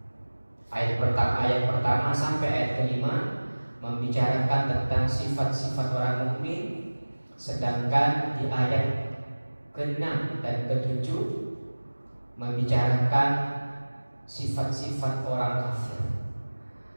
Ayat pertama sampai ayat kelima membicarakan tentang sifat-sifat orang mukmin, sedangkan di ayat ke-6 dan ke-7 membicarakan sifat-sifat orang kafir.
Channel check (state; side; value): inverted; both; correlation -1.00